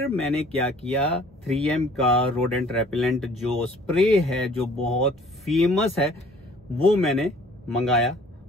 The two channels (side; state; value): both; normal; correlation 0.54